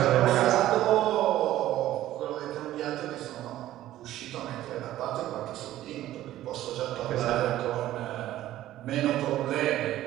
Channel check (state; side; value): quieter; left; 14.0 dB